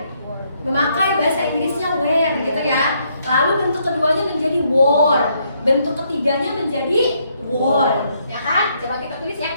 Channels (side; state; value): both; inverted; correlation -0.73